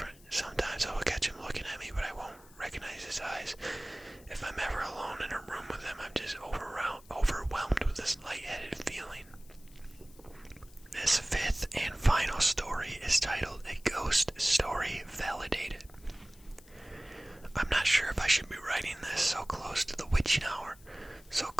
Sometimes I will catch him looking at me, but I won't recognize his eyes. If I'm ever alone in a room with him, I'm just overwhelmed with this lightheaded feeling. This fifth and final story is titled A Ghost Story Validated. I'm not sure if I should be writing this so close to the witching hour, so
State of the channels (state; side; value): noise; left; hiss, 25 dB below the sound